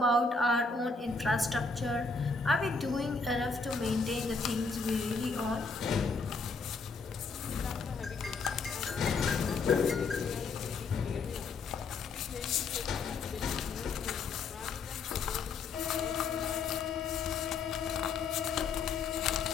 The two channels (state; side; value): quieter; right; 4.3 dB